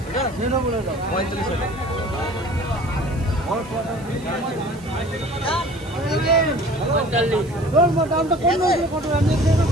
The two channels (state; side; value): noise; right; hiss, 24 dB below the sound